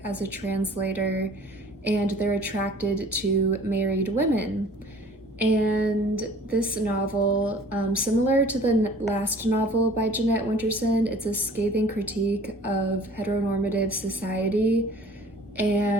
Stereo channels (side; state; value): both; normal; correlation 0.50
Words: as a translator and they're attracted to married women. And this novel, similar to the last novel by Jeanette Winterson, it's a scathing critique of heteronormative society